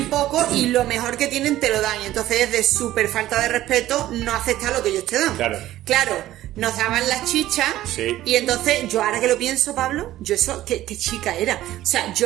poco y lo mejor que tienen te lo dan. Y entonces es de súper falta de respeto no aceptar lo que ellos te dan. Claro, nos daban las chichas. Sí. Y entonces, yo ahora que lo pienso, Pablo, yo eso, ¿qué chica era? O sea,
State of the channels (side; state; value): left; quieter; 14.5 dB